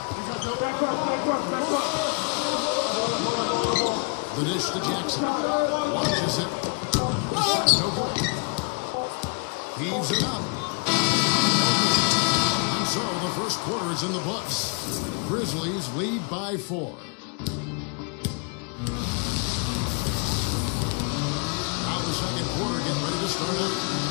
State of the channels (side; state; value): right; quieter; 36.4 dB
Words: The dish to Jackson. Launches it. The shot no good. Heaves it up. And so the first quarter is in the books. Grizzlies lead by 4. Now the second quarter getting ready to start up.